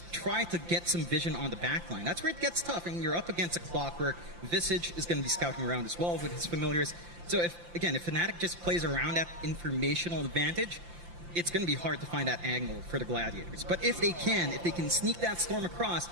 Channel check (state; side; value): late; left; 5.8 ms